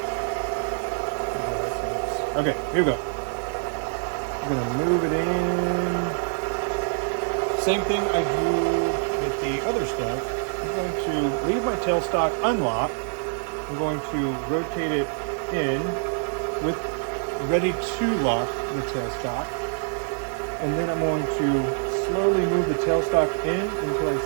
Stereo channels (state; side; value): silent; left; digital silence